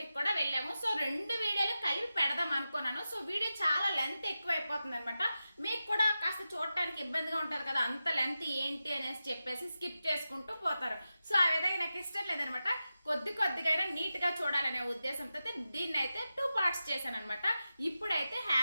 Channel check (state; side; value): inverted; both; correlation -0.92